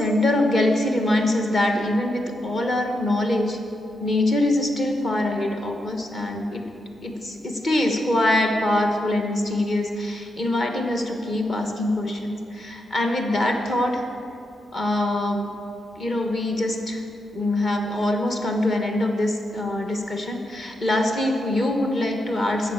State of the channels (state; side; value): normal; both; correlation 0.83